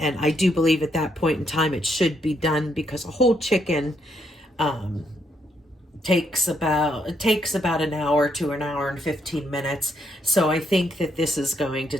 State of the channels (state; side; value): normal; both; correlation 0.75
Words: I do believe at that point in time it should be done, because a whole chicken takes about an hour to an hour and 15 minutes. So I think that this is going to